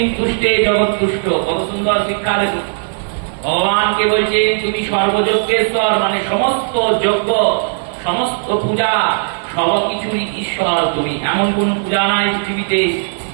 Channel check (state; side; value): silent; left; digital silence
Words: তুষ্টে জগৎতুষ্ট, কত সুন্দর শিক্ষা দেখুন। ভগবানকে বলছেন তুমি সর্বযজ্ঞেশ্বর, মানে সমস্ত যজ্ঞ সমস্ত পূজা সবকিছুই ঈশ্বর তুমি। এমন কোন পূজা নাই পৃথিবীতে